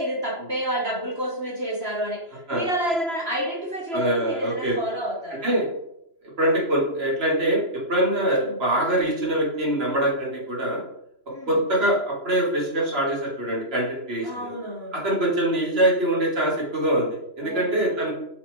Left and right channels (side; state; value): left; late; 3.0 ms